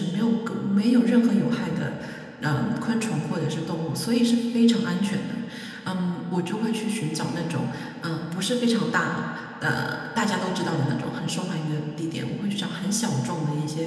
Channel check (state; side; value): identical; both; correlation 1.00